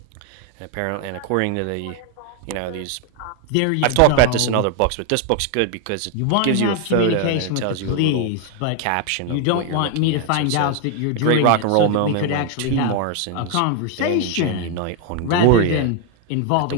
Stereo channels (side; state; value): both; different; correlation 0.01